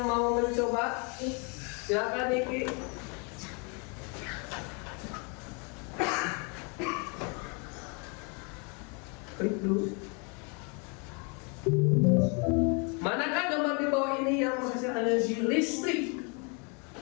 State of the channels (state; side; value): quieter; right; 34.5 dB